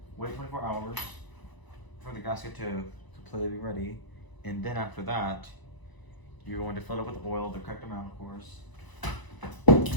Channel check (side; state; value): right; late; 1.0 ms